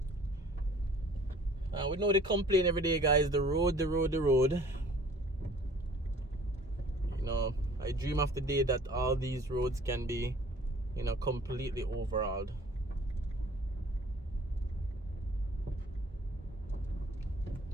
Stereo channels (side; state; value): both; normal; correlation 0.51